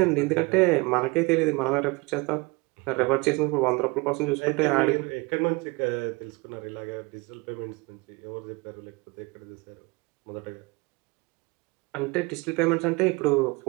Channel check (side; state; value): left; quieter; 26.4 dB